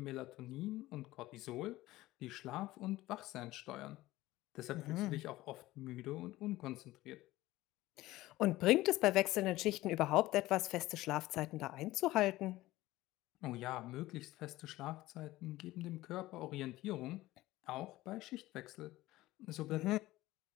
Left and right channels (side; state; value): right; quieter; 17.3 dB